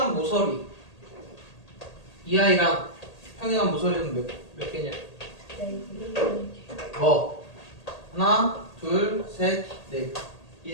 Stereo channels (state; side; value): late; right; 1.8 ms